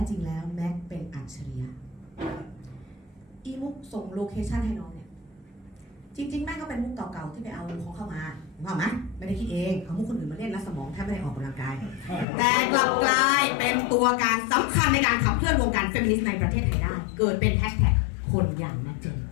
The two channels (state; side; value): drops out; right; at 12.2 s